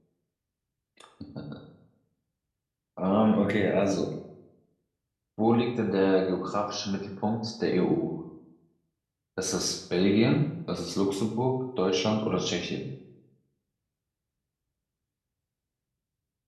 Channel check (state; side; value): identical; both; correlation 1.00